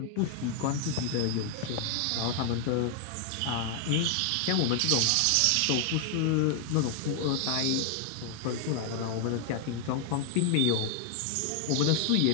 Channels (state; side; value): different; both; correlation 0.00